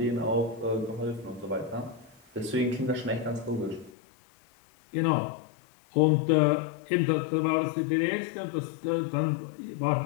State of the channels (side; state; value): right; drops out; at 3.9 s